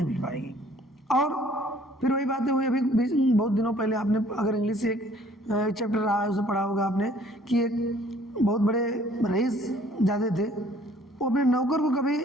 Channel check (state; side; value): normal; both; correlation 0.57